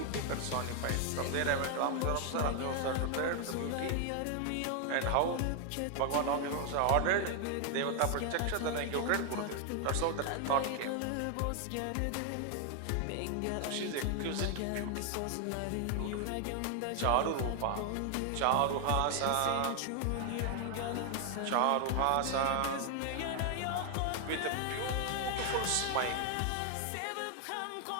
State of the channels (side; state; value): both; different; correlation 0.00